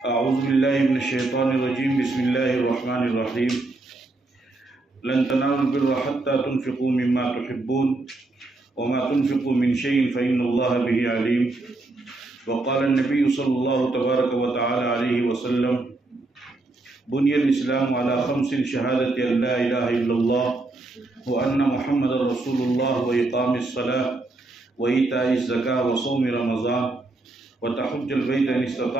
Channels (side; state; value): left; quieter; 3.1 dB